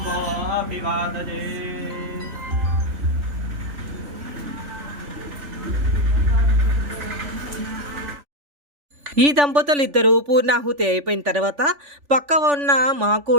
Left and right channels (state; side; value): late; left; 3.5 ms